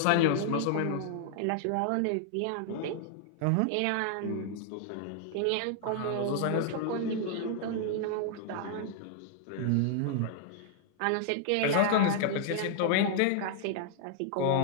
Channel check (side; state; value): both; different; correlation -0.01